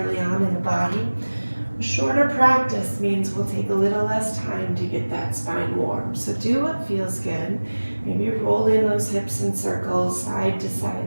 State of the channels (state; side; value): inverted; both; correlation -1.00